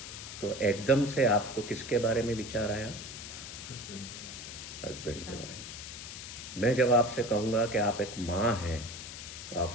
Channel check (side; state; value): left; noise; hiss, 10 dB below the sound